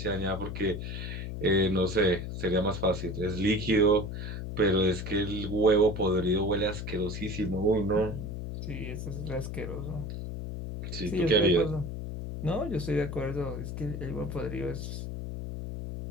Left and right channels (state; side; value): noise; left; hum, 6 dB below the sound